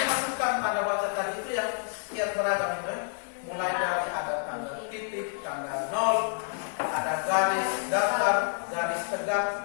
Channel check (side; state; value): right; silent; digital silence